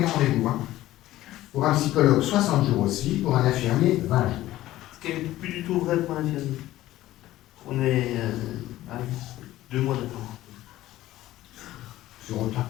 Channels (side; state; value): right; quieter; 15.3 dB